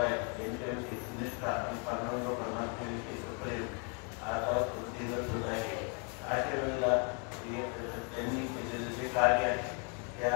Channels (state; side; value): quieter; right; 37.4 dB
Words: यांच्याविषयी निष्ठा आणि पांडुरंग परमात्म्याविषयी प्रेम आता वृद्धिंगत होत आहे. अशा वेळेला त्यांनी केलेलं जे कार्य आहे